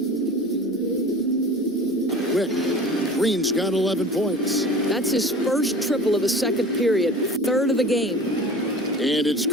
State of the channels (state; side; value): normal; both; correlation 0.40